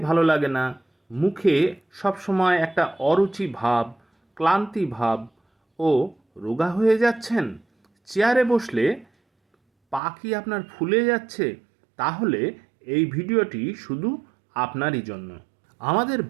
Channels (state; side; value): drops out; left; at 10.0 s